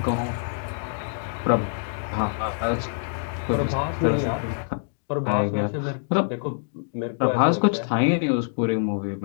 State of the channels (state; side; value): silent; right; digital silence